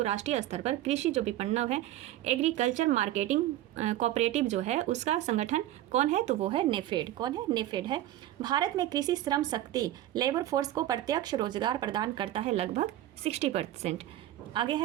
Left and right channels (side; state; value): left; quieter; 13.7 dB